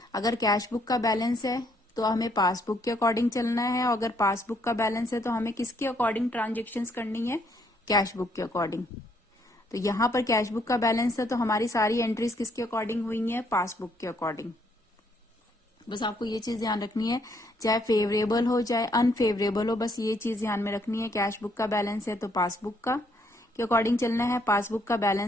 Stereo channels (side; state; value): both; normal; correlation 0.70